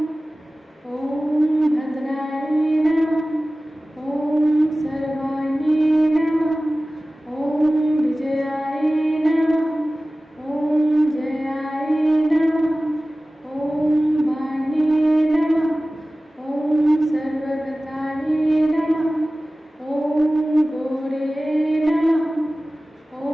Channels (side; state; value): both; normal; correlation 0.97